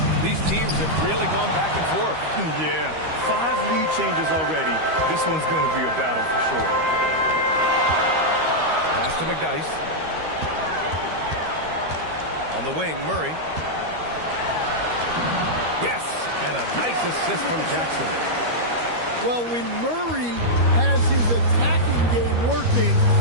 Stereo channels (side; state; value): left; late; 13 ms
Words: These teams have really gone back and forth. Yeah, 5 lead changes already. This one's going to be a battle for sure. Pass to McDyess. On the wing, Murray. Yes, and a nice assist from Jackson. Well, when Murray has his attacking game working,